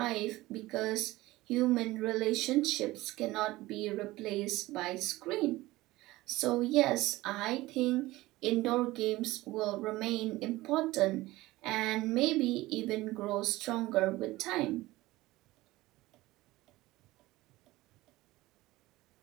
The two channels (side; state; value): left; quieter; 18.6 dB